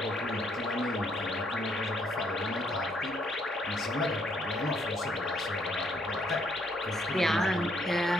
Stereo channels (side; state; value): both; normal; correlation 0.70